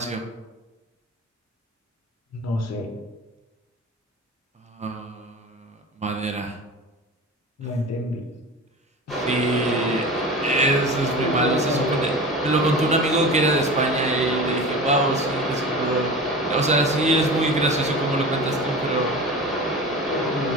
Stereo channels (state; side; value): normal; both; correlation 0.33